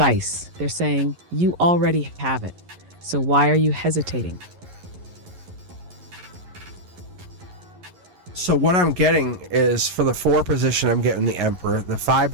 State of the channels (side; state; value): left; late; 11 ms